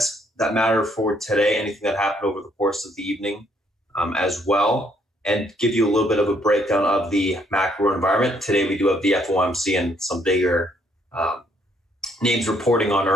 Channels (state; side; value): normal; both; correlation 0.69